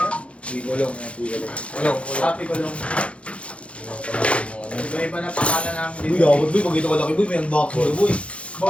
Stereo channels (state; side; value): late; right; 0.061 ms